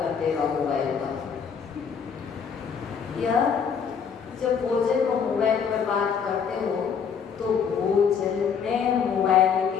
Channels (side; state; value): right; quieter; 6.8 dB